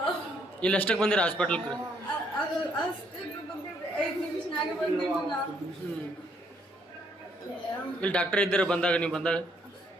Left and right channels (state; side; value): normal; both; correlation 0.69